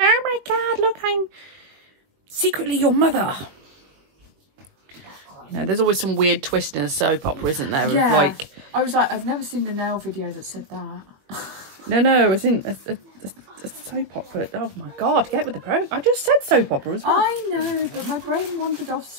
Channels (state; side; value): late; left; 21 ms